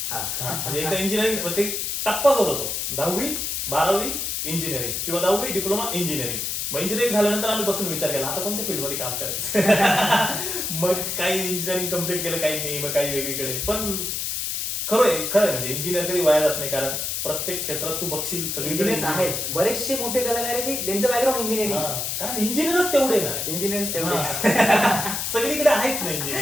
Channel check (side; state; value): left; noise; hiss, 2 dB below the sound